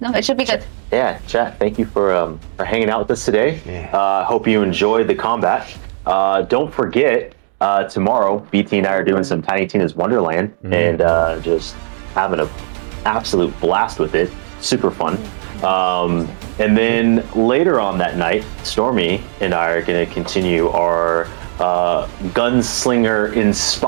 it should be good. Yeah, chat. Thank you for hanging out with us today. Yeah. Hope you enjoyed the combat. Don't forget, tomorrow BT and I are doing some Tiny Tina's Wonderland and just having an absolute blast with it. Super fun. And then later on that night, Stormy and I are going to continue our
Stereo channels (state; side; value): silent; left; digital silence